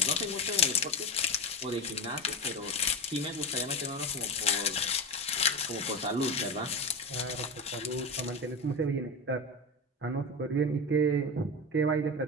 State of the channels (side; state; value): both; normal; correlation 0.21